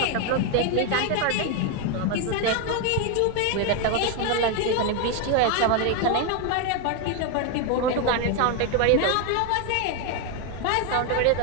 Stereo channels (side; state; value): both; different; correlation 0.01